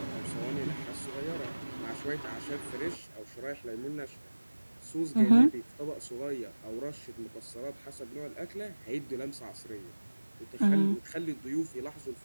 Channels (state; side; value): inverted; both; correlation -1.00